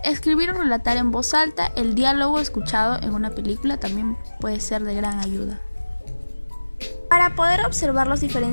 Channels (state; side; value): inverted; both; correlation -1.00